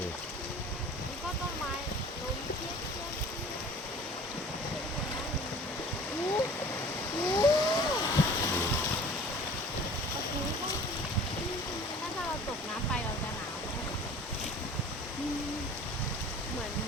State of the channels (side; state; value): both; normal; correlation 0.45